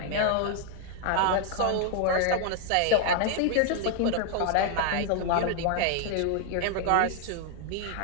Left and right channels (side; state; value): both; different; correlation 0.00